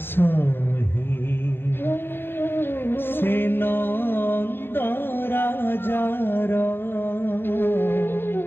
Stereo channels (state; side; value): late; right; 0.10 ms